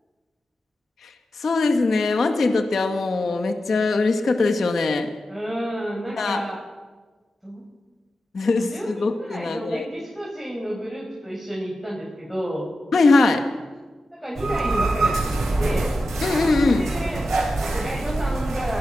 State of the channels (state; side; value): normal; both; correlation 0.91